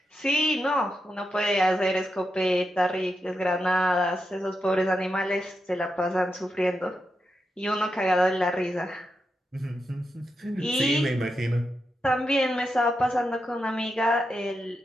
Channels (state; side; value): normal; both; correlation 0.87